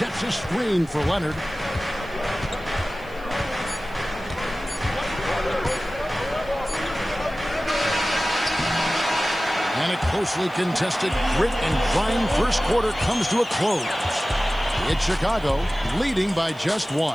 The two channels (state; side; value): noise; right; hiss, 28 dB below the sound